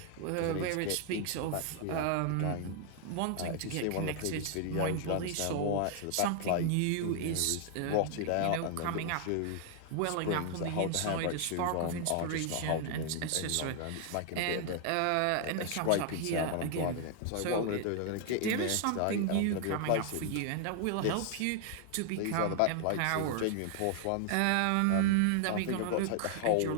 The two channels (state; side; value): different; both; correlation 0.00